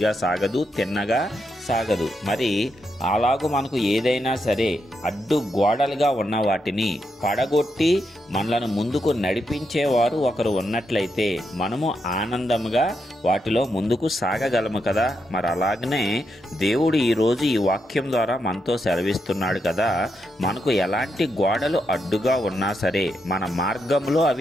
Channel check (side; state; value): both; normal; correlation 0.82